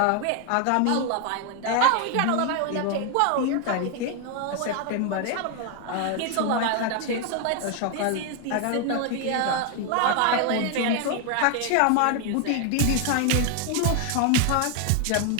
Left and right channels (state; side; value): different; both; correlation 0.00